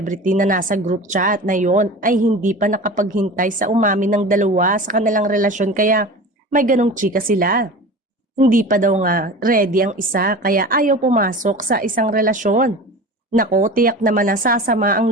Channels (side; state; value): both; normal; correlation 0.35